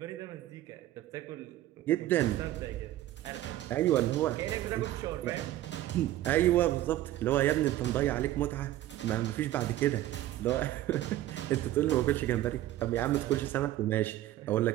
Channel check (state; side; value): quieter; left; 14.3 dB